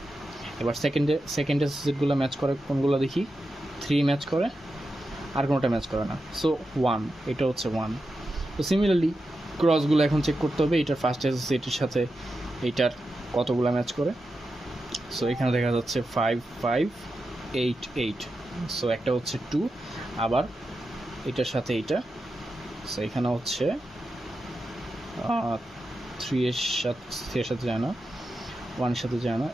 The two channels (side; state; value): both; normal; correlation 0.89